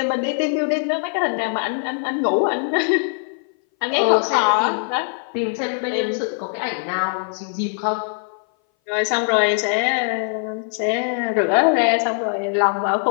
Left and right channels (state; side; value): silent; right; 60 dB below the other